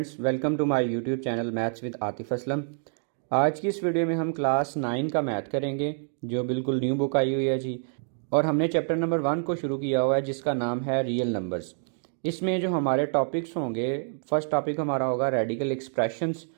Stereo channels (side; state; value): left; silent; 60 dB below the other